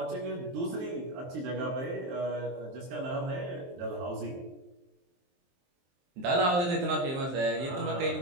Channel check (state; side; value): late; left; 23 ms